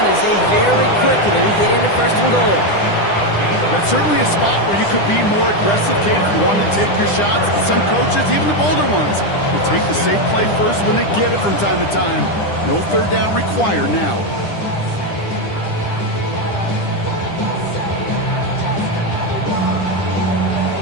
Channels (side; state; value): right; late; 10 ms